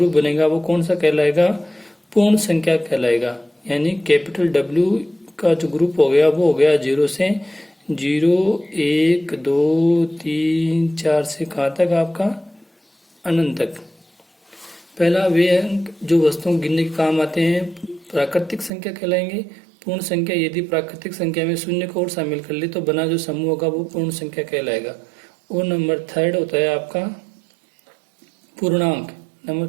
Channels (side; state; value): left; drops out; at 18.7 s